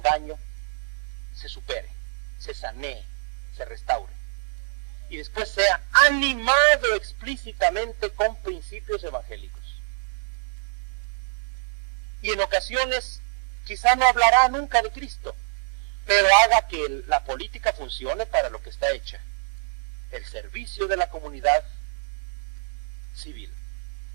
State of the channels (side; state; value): left; silent; digital silence